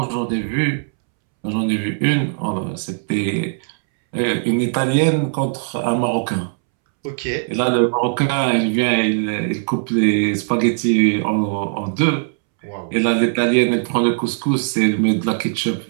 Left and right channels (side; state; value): left; silent; 66 dB below the other